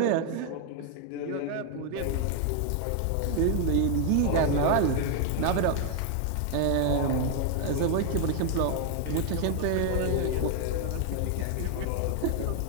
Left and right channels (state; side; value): different; both; correlation 0.00